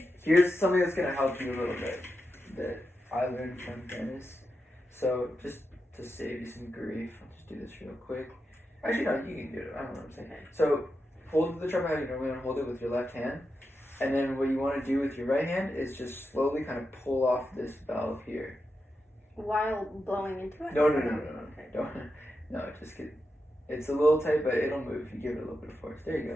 here's something that's gonna help you a little bit that I learned from Dennis. So just to save you some grief, I'll just do this real quick. Actually, no, you can do it. I don't know what I'm saying. So hold the trumpet how you normally want to hold it with your left hand, and then what you want to do with your right hand is just slowly kind of pull off this valve here. While blowing into it? No. Don't. No, just get. It's a little tight, but it'll move if you give it a little bit of force. There you go.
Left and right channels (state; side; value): normal; both; correlation 0.88